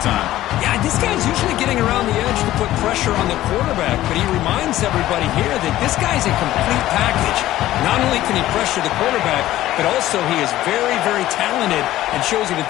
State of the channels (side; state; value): right; quieter; 14.7 dB